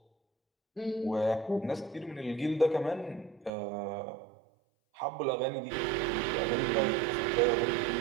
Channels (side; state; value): left; drops out; at 3.5 s